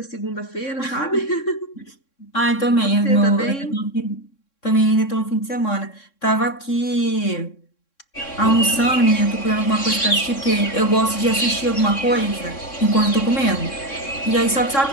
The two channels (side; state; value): right; late; 3.6 ms